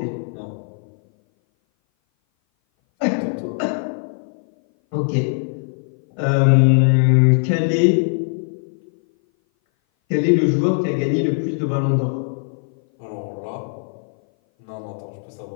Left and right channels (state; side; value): silent; right; 58 dB below the other